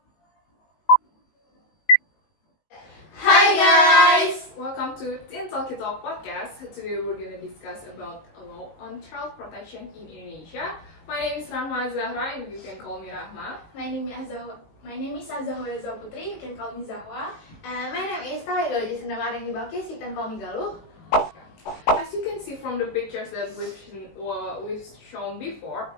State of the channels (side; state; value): right; late; 19 ms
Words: Hi guys! Welcome to Teen Talkie Talk Podcast. Today we're gonna discuss about a law on child protection in Indonesia. My name is Rahma Azzahra and you can call me Rahma. My name is Azzahwa. Putri, you can call me Azzahwa. And my name is Talya, Jaecyenda Maharani Balqis, you can call me Galuh. As you can see from the pictures that we've shown before,